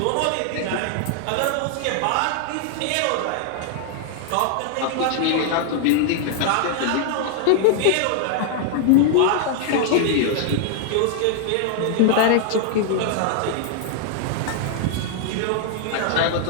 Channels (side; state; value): both; different; correlation 0.00